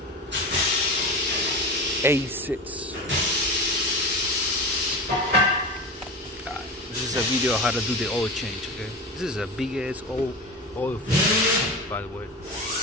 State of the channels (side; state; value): both; normal; correlation 0.27